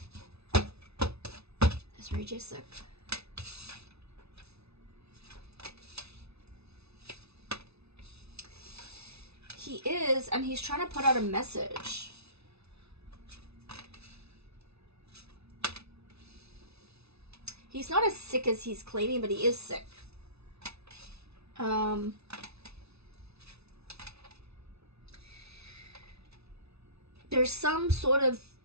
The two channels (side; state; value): left; late; 0.80 ms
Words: Is Ray J sick? He is, and he's trying to put out a message. He's not as sick as he's claiming, but he is sick. There's some sort of